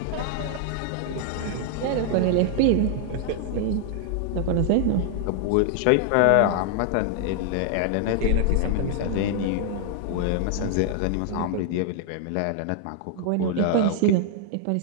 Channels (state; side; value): different; both; correlation 0.00